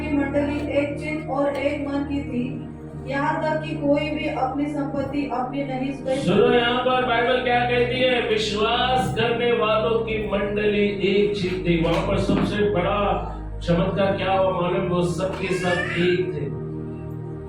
मंडली एक चित्त और एक मन की थी, यहाँ तक कि कोई भी अपनी संपत्ति अपनी नहीं सुनो, यहाँ पर बाइबल क्या कहती है? विश्वास करने वालों की मंडली एक चित्त थी। वहां पर सबसे बड़ा चमत्कार क्या हुआ मालूम? वो सबके सब एक थे,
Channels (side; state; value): both; identical; correlation 1.00